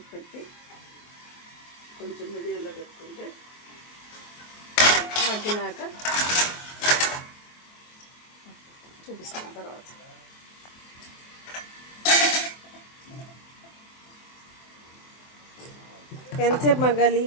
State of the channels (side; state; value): right; late; 24 ms